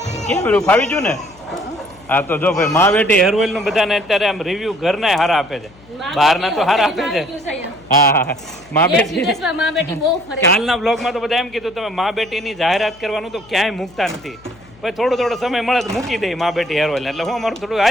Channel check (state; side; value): noise; left; hum, 25 dB below the sound